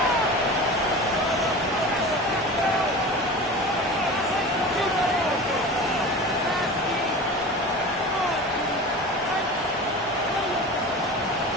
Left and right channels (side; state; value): both; normal; correlation 0.33